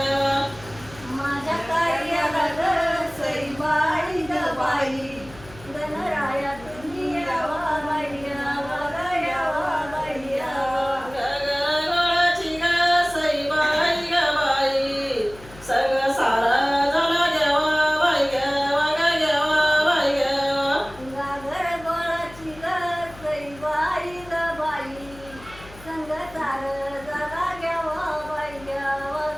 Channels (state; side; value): noise; left; hum, 19 dB below the sound